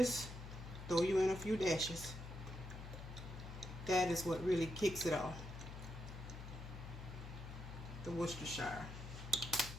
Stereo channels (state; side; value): noise; left; hum, 10 dB below the sound